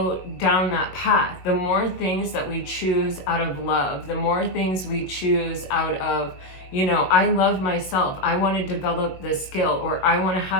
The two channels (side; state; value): right; late; 22 ms